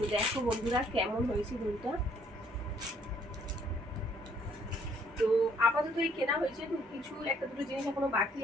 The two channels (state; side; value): normal; both; correlation 0.64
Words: দেখো বন্ধুরা কেমন হয়েছে দুলটা। তো আপাতত এই কেনা হয়েছে, তো কিছু একটা দুটো জিনিস এখনো বাকি